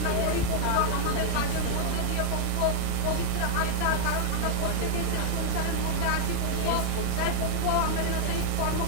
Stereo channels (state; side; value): different; both; correlation 0.00